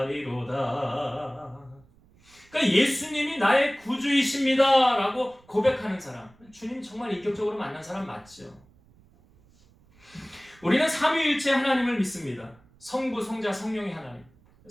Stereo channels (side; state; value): right; noise; rumble, 29 dB below the sound